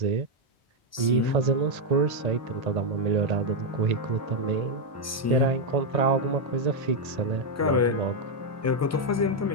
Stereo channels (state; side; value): normal; both; correlation 0.01